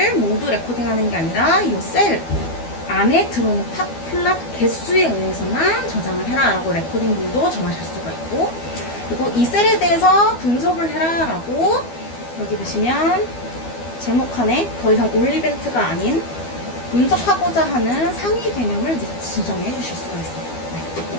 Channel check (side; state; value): right; late; 12 ms